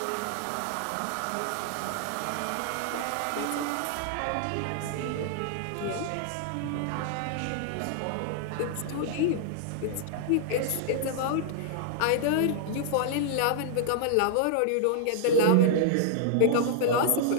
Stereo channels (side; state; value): both; different; correlation -0.01